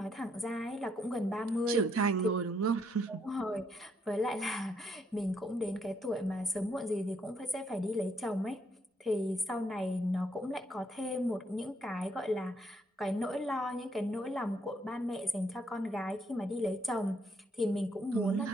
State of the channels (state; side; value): normal; both; correlation 0.72